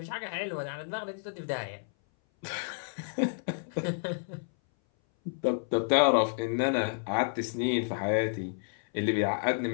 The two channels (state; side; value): silent; right; 57 dB below the other